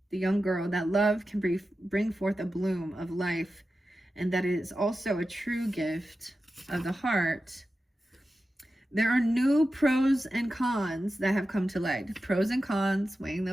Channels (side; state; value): both; normal; correlation 0.92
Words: the young girl, that love can bring forth a bloom of life, and that it is also a true gift of the heart. There are new pros and cons that have come to light. Pros and cons, weighing